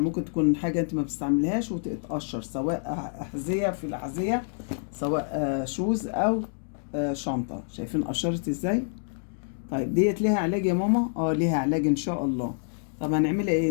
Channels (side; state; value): right; silent; digital silence